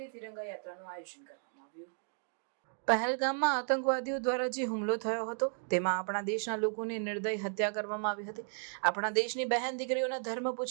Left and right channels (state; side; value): silent; left; 55 dB below the other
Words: તિરંગા યાત્રાનું આયોજન કરવામાં આવ્યું। પહેલગામમાં આતંકવાદીઓ દ્વારા જે હુમલો થયો હતો તેમાં આપણા દેશના લોકોની નિર્દય હત્યા કરવામાં આવી હતી। આપણા દેશની બહેન દીકરીઓના ધર્મ